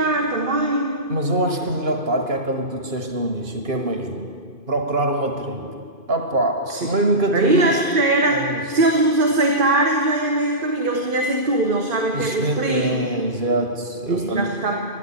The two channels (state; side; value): late; left; 2.5 ms